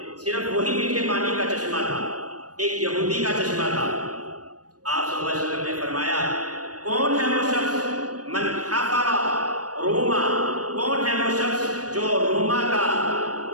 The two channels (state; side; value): late; left; 0.68 ms